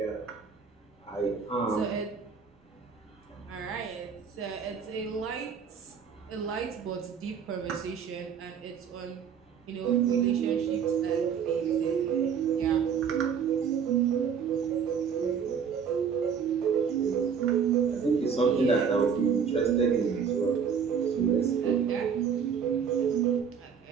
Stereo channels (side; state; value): left; quieter; 6.9 dB